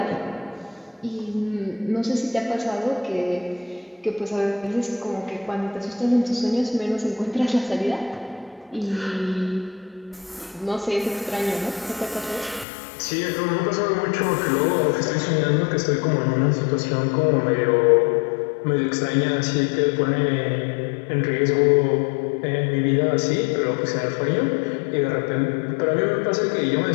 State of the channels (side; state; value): right; drops out; at 12.7 s